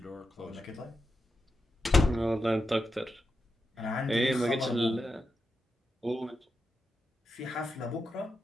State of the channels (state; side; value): normal; both; correlation 0.87